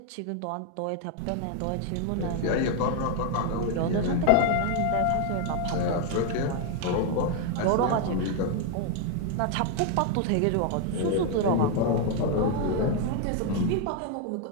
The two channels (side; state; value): both; different; correlation 0.01